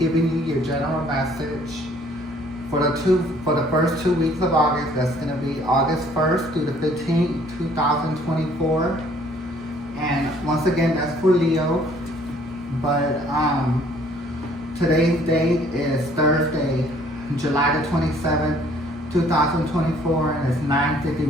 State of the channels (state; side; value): normal; both; correlation 0.59